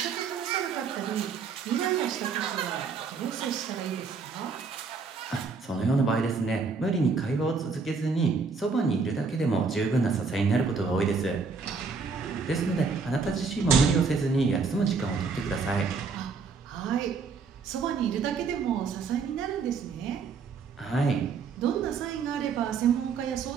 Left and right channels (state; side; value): quieter; left; 5.0 dB